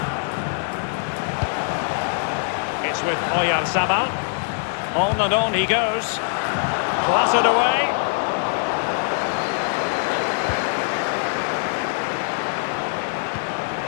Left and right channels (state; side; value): silent; right; digital silence